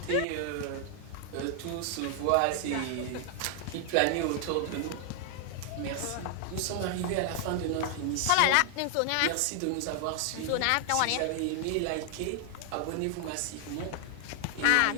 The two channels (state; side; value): different; both; correlation 0.00